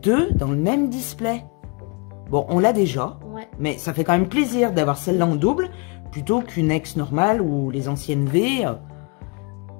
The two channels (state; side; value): quieter; right; 31.8 dB